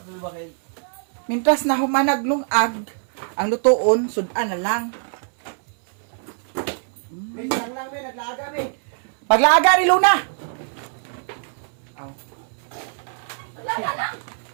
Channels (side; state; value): left; silent; 63 dB below the other